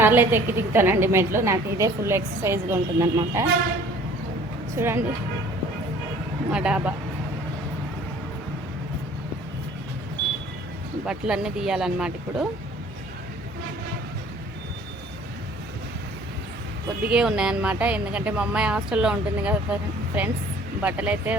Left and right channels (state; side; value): normal; both; correlation 0.52